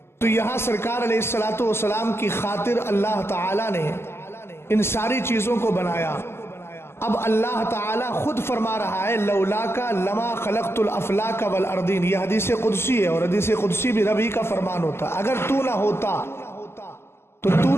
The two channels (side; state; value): right; late; 0.12 ms